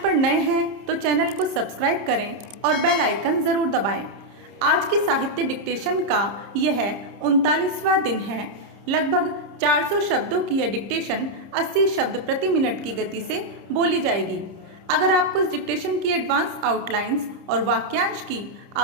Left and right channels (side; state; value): left; late; 30 ms